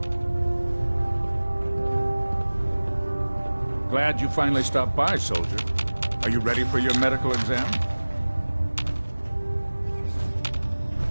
Glad you finally stopped by, soldier. Are you ready for your medical exam?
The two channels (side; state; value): both; inverted; correlation -1.00